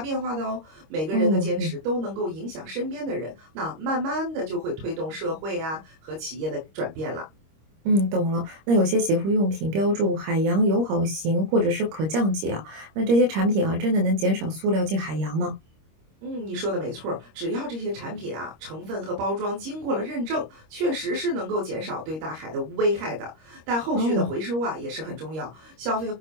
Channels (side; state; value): left; late; 26 ms